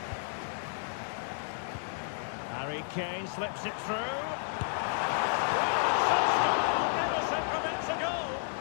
Harry Kane slips it through. Ederson prevents a goal.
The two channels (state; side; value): silent; right; digital silence